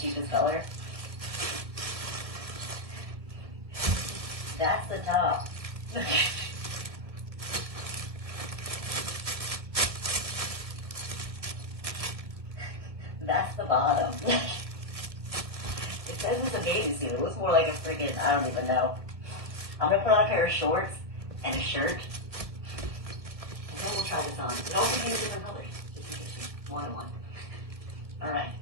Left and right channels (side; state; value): left; late; 1.5 ms